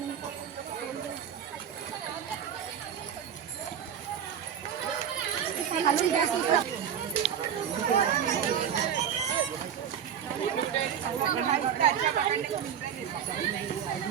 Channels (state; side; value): quieter; left; 8.7 dB